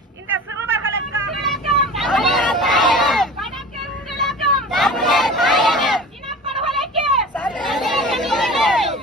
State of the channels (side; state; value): both; normal; correlation 0.37